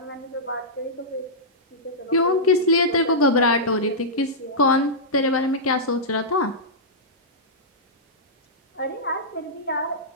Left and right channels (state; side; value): normal; both; correlation -0.13